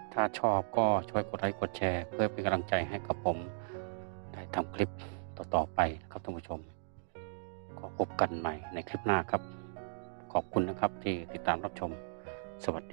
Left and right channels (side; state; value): left; silent; digital silence